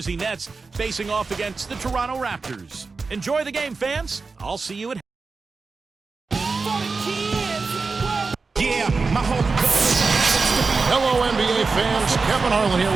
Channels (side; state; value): left; quieter; 4.3 dB